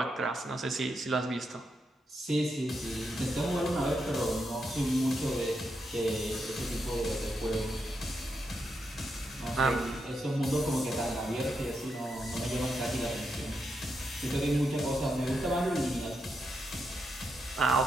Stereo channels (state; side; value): normal; both; correlation 0.83